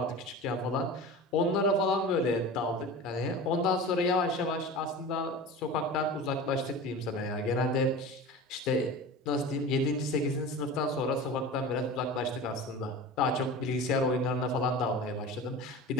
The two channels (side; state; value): both; normal; correlation 0.33